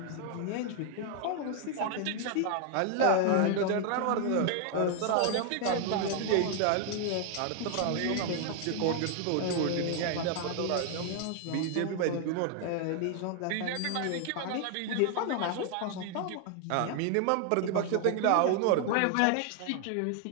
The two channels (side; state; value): both; different; correlation 0.00